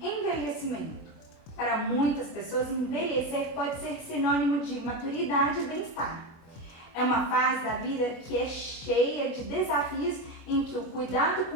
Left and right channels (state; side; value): late; right; 25 ms